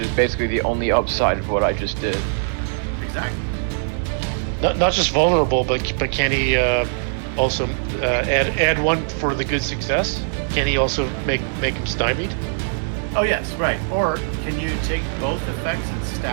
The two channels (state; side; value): silent; left; 57 dB below the other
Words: basically the only upside of what I just did. exactly. Not just vulnerable, but can he also add 1 for the good success? Can he also make him stymied? Oh yes, right. Or can you take both effects and